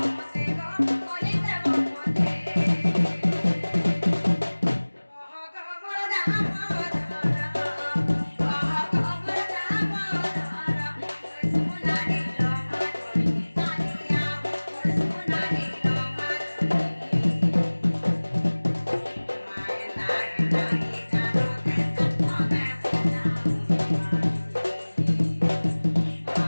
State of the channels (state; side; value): inverted; both; correlation -1.00